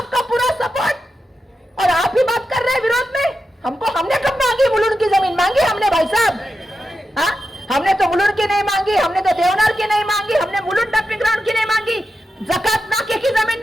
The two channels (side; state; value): both; normal; correlation 0.89